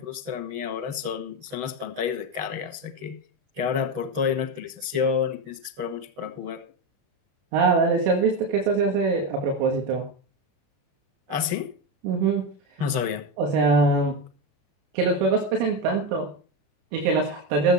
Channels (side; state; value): left; late; 21 ms